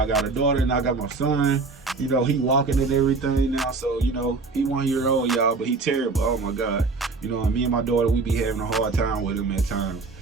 got a daughter and I got my son. He walking and everything now. So, he 1 year old, y'all, but he terrible. Oh my God. Me and my daughter, we be having a hard time with him at times.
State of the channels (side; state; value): left; quieter; 4.0 dB